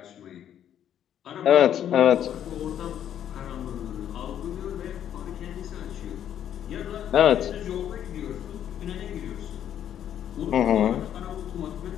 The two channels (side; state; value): right; quieter; 10.2 dB